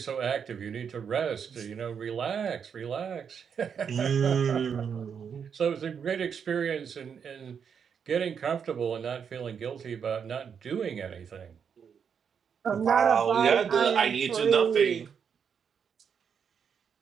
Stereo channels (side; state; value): left; quieter; 7.1 dB